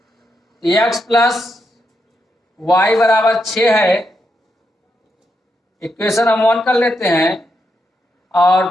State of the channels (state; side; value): normal; both; correlation 0.83